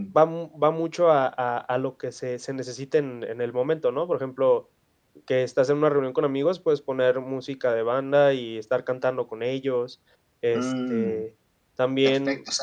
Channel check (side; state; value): both; identical; correlation 1.00